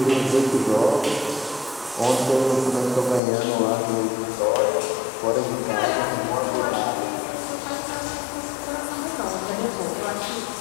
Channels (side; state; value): right; drops out; at 3.2 s